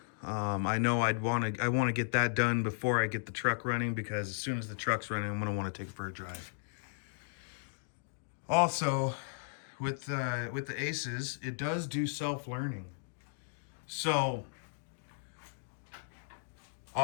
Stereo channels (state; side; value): silent; right; digital silence